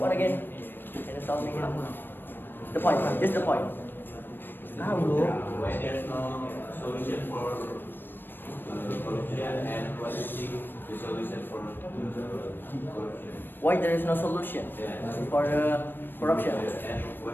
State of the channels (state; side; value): late; right; 0.095 ms